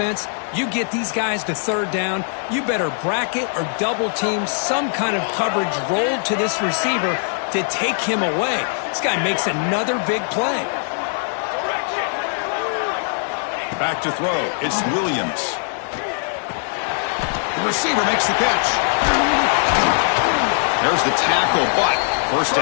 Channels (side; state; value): right; silent; digital silence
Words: you get these guys to 3rd down, you better bracket or double team some kind of coverage rolled to this receiver to take him away. This guy makes another big play. Back to throw. It's Williams. The receiver makes the catch. There's the tackle, but 1st